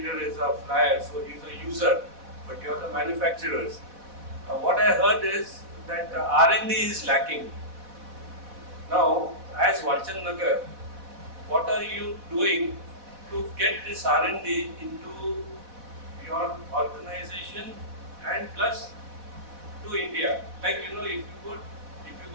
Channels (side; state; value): left; late; 4.1 ms